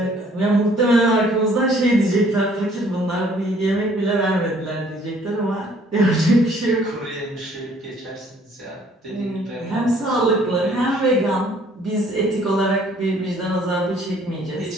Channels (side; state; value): both; normal; correlation 0.60